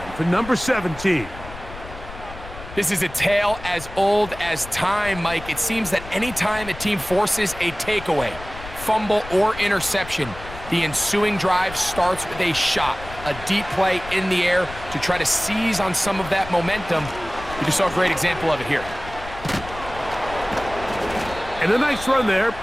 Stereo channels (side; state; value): left; noise; rumble, 14 dB below the sound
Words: for number 17. This is a tale as old as time, Mike. It seems that anytime a team forces a takeaway, fumble, or interception, the ensuing drive starts with a shot, a deep play in the air to try to seize on some of that momentum. You just saw a great example of it here. And a nice run there